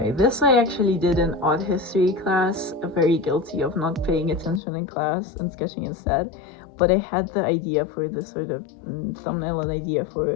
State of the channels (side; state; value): right; drops out; at 4.6 s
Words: this I actually did in art history class, very guilty of not paying attention in class and sketching instead, but I had the idea for this sort of thumbnail, an idea